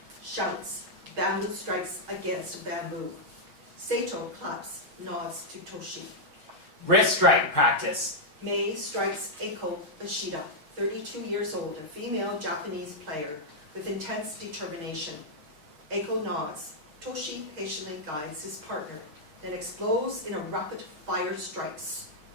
Shouts, bamboo strikes against bamboo. Sato claps, nods to Toshi. Wrist strike practice. May strikes AIKO Ishida, 32 years old, a female Japanese player with intense determination. AIKO nods. Toshi patiently guides his partner, then explodes in a rapid fire strikes.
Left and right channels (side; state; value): left; late; 6.4 ms